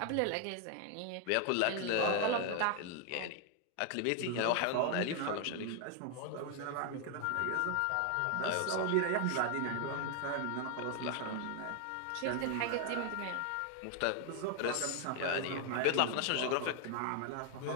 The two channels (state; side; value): different; both; correlation 0.00